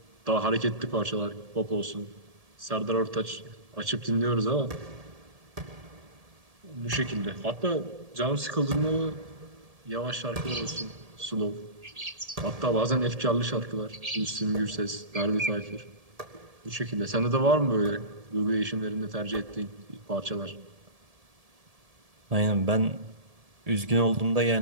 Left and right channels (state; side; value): late; left; 1.7 ms